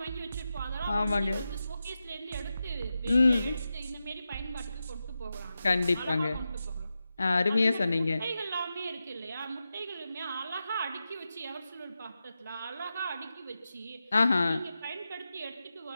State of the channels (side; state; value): both; inverted; correlation -0.91